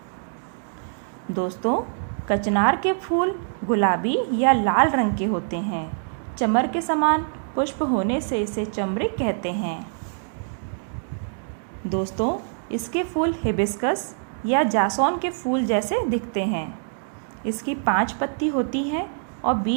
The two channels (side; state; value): left; silent; digital silence